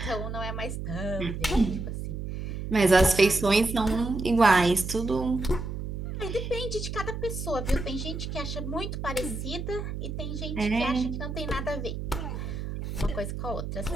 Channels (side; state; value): right; noise; hum, 5 dB below the sound